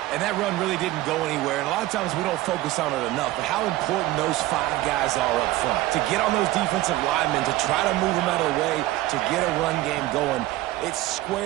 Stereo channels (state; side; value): quieter; left; 16.8 dB